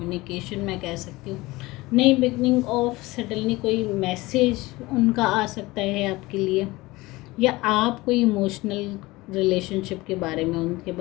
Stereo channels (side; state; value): right; quieter; 20.7 dB